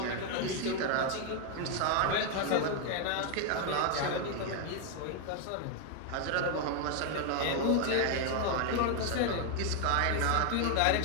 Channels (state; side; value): different; both; correlation 0.00